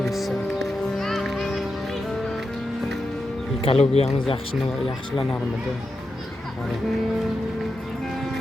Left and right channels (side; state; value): both; normal; correlation 0.88